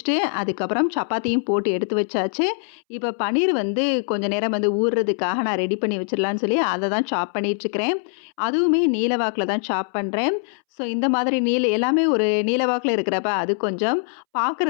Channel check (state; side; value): silent; right; 63 dB below the other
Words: அதுக்கப்புறம் சப்பாத்தியும் போட்டு எடுத்து வச்சாச்சு. இப்போ பன்னீர் கொஞ்சம் நேரம் ஊறுறதுக்காக நான் ரெடி பண்ணி வச்சிடலான்னு சொல்லி அதை தான் சாப் பண்ணிகிட்ருக்கிறேன். அதுவுமே நீலவாக்கில் தான் சாப் பண்ணுறேன். ஸோ இந்த மாதிரி எல்லாமே ஒரு நீலவாக்கில் இருக்கிறப்ப அது கொஞ்சம்